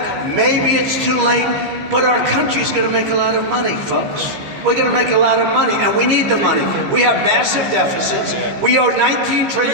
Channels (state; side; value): late; left; 15 ms